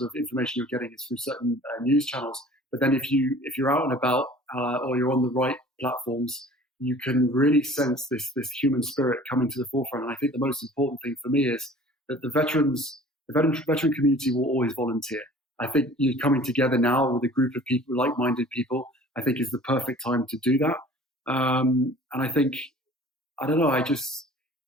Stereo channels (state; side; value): normal; both; correlation 0.47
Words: of information you're getting is through certain news channels. But then if you're out and about or you're on the right platforms, you can really sense this human spirit coming to the forefront. And I think the most important thing for me is that the veteran community will always volunteer. I think you coming together now with a group of people, like-minded people, I think is the perfect time to do that. And I think, I don't know, as